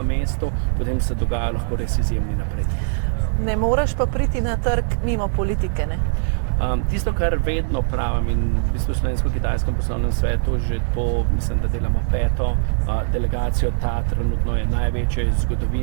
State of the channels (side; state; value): left; silent; 65 dB below the other